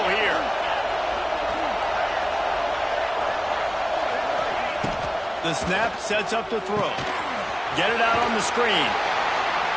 here. The snap sets up to throw. Get it out on the screen.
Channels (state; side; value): identical; both; correlation 1.00